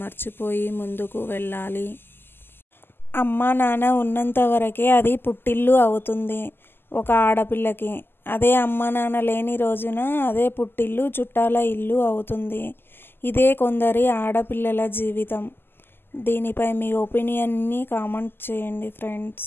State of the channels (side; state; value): right; late; 0.10 ms